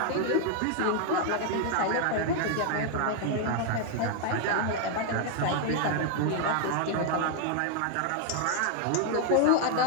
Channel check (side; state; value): both; different; correlation 0.00